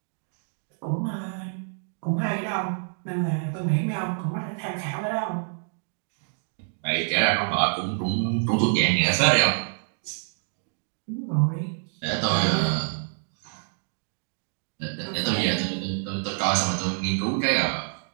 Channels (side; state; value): left; silent; 60 dB below the other